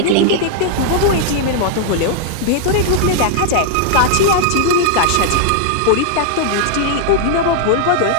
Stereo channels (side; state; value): both; different; correlation -0.01